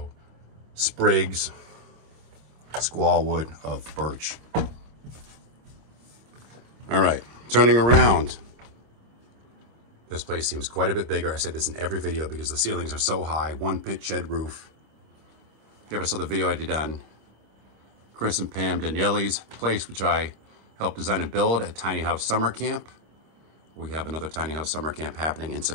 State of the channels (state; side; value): late; left; 26 ms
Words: sprigs, squaw wood of birch. All right, turning around. This place seems quite a bit bigger. I said this in every video because the ceilings are so high. One pit shed roof. If you ever saw the video I did on Chris and Pam Daniele's place, which I helped design and build at Tiny House Summer Camp. We have another Tiny House Summer Camp happening in